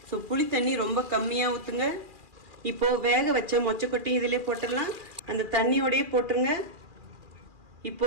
ஸோ புளி தண்ணி ரொம்ப கம்மியாக ஊற்றுங்க. இப்போது வேக வச்ச மொச்சக்கொட்டையும் இதிலே போட்டுடலாம். அந்த தண்ணியோடையே போட்டுருங்க.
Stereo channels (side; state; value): left; late; 2.4 ms